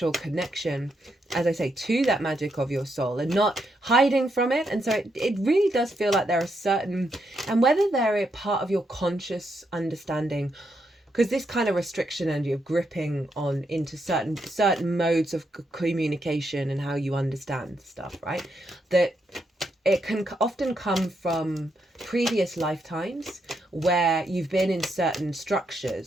connection, as I say, to that magic of your soul and not hiding from it. And so it really does feel like there are certain, and whether they're a part of your conscious understanding, because this kind of restriction energy of gripping on into certain modes of communication and how you understand stuff, right? That it can often come from previous lifetimes where you've been in certain structures,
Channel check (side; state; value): both; normal; correlation 0.80